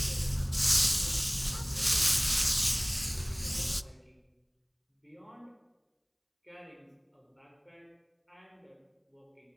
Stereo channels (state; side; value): identical; both; correlation 1.00